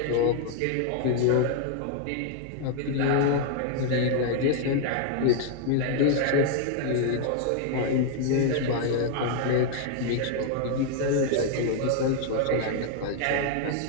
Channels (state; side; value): different; both; correlation 0.00